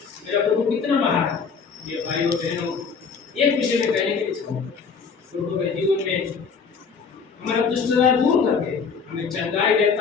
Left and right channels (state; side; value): quieter; right; 5.7 dB